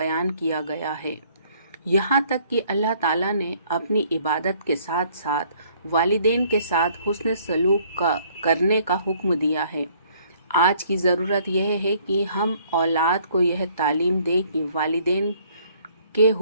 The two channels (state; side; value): inverted; both; correlation -0.61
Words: کیا گیا ہے، یہاں تک کہ اللہ تعالیٰ نے اپنی عبادت کے ساتھ ساتھ والدین کے ساتھ حسن سلوک کرنے کا حکم دیا ہے۔ آج کی ضرورت یہ ہے کہ ہم اولاد کو یہ تعلیم دیں کہ والدین کے